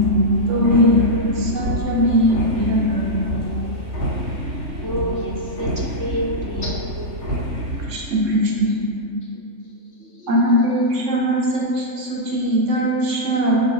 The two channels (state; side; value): late; left; 3.6 ms